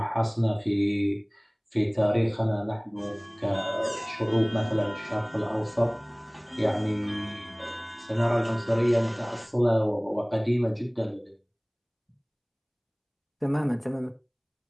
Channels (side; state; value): both; identical; correlation 1.00